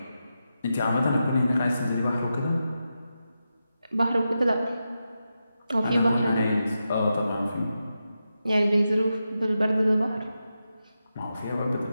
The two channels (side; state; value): both; inverted; correlation -0.89